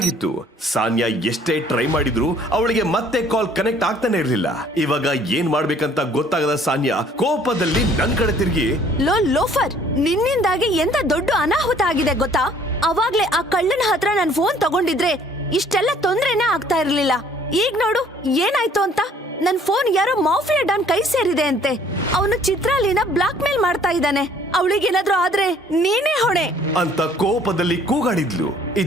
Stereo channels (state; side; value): normal; both; correlation 0.58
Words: ಸಾನ್ಯಾ ಎಷ್ಟೇ ಟ್ರೈ ಮಾಡಿದ್ರು ಅವಳಿಗೆ ಮತ್ತೆ ಕಾಲ್ ಕನೆಕ್ಟ್ ಆಗ್ತಾನೆ ಇರ್ಲಿಲ್ಲ. ಇವಾಗ ಏನ್ ಮಾಡ್ಬೇಕಂತ ಗೊತ್ತಾಗದ ಸಾನ್ಯಾ ಕೋಪದಲ್ಲಿ ನನ್ ಕಡೆ ತಿರುಗಿ, ಲೋಫರ್, ನಿನ್ನಿಂದಾಗಿ ಎಂತ ದೊಡ್ಡ ಅನಾಹುತ ಆಗಿದೆ ಗೊತ್ತಾ? ಅವಾಗ್ಲೇ ಆ ಕಳ್ಳನ ಹತ್ರ ನನ್ ಫೋನ್ ತಗೊಂಡಿದ್ರೆ ಇಷ್ಟೆಲ್ಲ ತೊಂದ್ರೆನೇ ಆಗ್ತಾ ಇರ್ಲಿಲ್ಲ. ಈಗ ನೋಡು ಏನಾಯ್ತು ಅಂತ. ನನ್ ಫೋನ್ ಯಾರೋ ಮಾಫಿಯಾ ಡಾನ್ ಕೈ ಸೇರಿದೆ ಅಂತೆ. ಅವನು ಚಿತ್ರಾಲಿನ ಬ್ಲಾಕ್ ಮೇಲ್ ಮಾಡ್ತಾ ಇದ್ದಾನೆ. ಅವಳಿಗೇನಾದ್ರೂ ಆದ್ರೆ ನೀನೇ ಹೊಣೆ ಅಂತ ಕೋಪದಲ್ಲಿ ಕೂಗಾಡಿದ್ಲು.